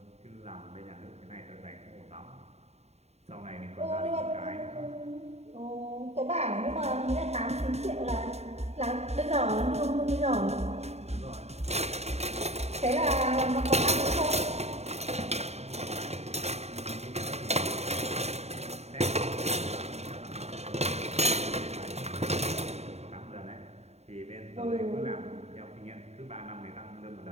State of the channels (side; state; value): left; late; 0.31 ms